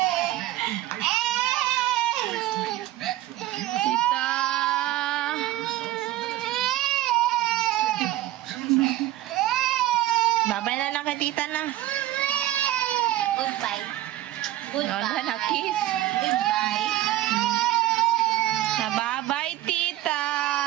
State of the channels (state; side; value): quieter; left; 14.8 dB